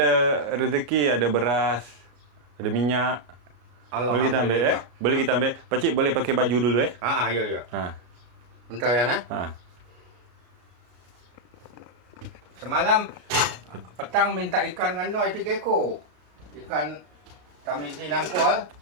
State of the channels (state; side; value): late; left; 33 ms